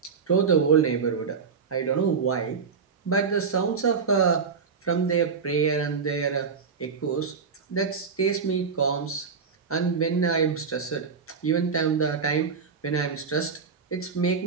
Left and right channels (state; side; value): quieter; left; 5.6 dB